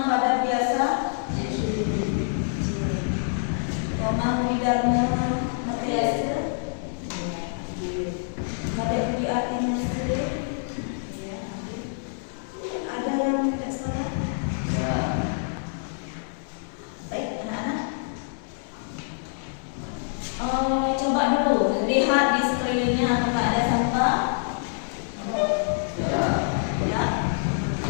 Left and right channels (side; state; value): right; silent; digital silence